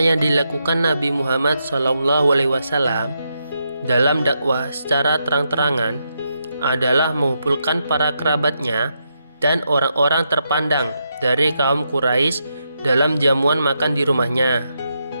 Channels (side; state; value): both; inverted; correlation -0.82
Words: yang dilakukan Nabi Muhammad SAW dalam dakwah secara terang-terangan adalah mengumpulkan para kerabatnya dan orang-orang terpandang dari kaum Quraisy dalam jamuan makan di rumahnya.